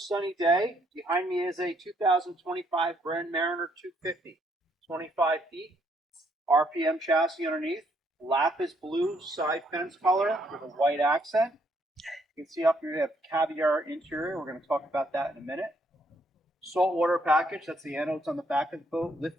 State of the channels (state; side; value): normal; both; correlation 0.71